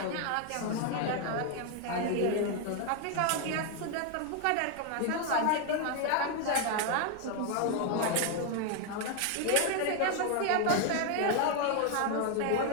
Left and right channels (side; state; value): both; different; correlation 0.00